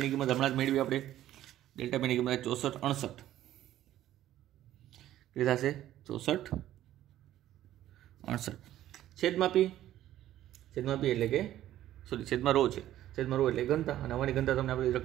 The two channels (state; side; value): quieter; left; 13.1 dB